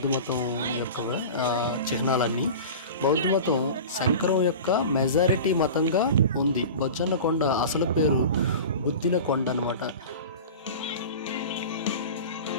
మతం యొక్క చిహ్నాలన్నీ. బౌద్ధ మతం శంకరం యొక్క మెజారిటీ మతంగా ఉంది. బొజ్జన్నకొండ అసలు పేరు బుద్ధిన కొండ అనమాట.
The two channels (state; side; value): inverted; both; correlation -0.34